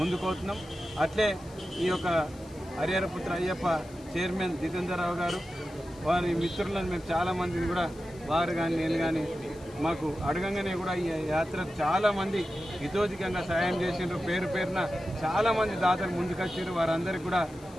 అట్లే ఈ యొక్క హరిహరపుత్ర అయ్యప్ప చైర్మన్ జితేందర్ రావు గారు, వారి మిత్రులను మేము చాలా మందిని కూడా వారు కానీ నేను కానీ మాకు అడగంగానే కూడా ఈ యాత్రకు చాలా మంది హితోధికంగా సాయం చేసిండ్రు. పేరు పేరున చాలా మంది దాతలు ముందుకొచ్చారు. వారందరికీ కూడా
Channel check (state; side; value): noise; left; hiss, 25 dB below the sound